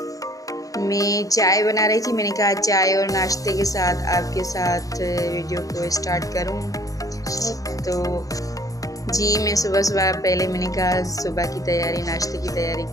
मैं चाय बना रही थी, मैंने कहा चाय और नाश्ते के साथ आपके साथ वीडियो को स्टार्ट करूं। तो जी मैं सुबह पहले मैंने कहा सुबह की तैयारी, नाश्ते की तैयारी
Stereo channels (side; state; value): right; late; 0.17 ms